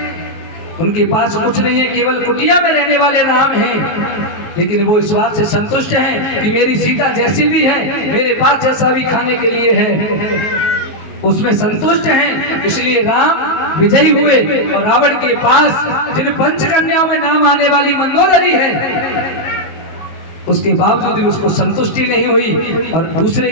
उनके पास कुछ नहीं है, केवल कुटिया में रहने वाले राम हैं, लेकिन वो इस बात से संतुष्ट हैं कि मेरी सीता जैसी भी है, मेरे पास जैसा भी खाने के लिए है, उसमें संतुष्ट हैं। इसलिए राम विजयी हुए और रावण के पास जिन पंचकन्याओं में नाम आने वाली मंदोदरी है, उसके बावजूद भी उसको संतुष्टि नहीं हुई और दूसरे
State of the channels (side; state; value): right; late; 19 ms